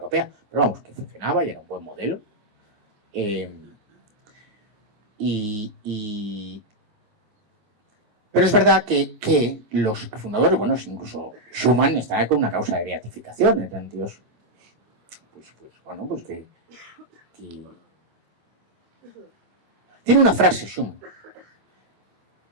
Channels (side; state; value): left; late; 26 ms